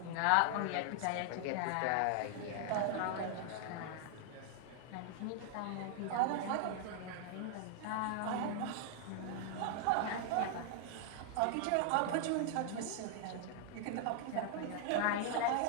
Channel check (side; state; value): both; different; correlation 0.00